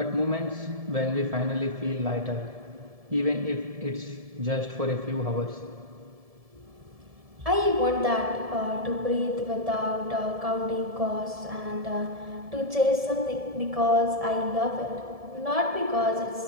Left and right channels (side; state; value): left; late; 1.7 ms